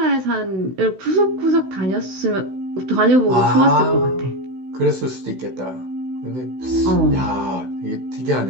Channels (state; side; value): late; left; 16 ms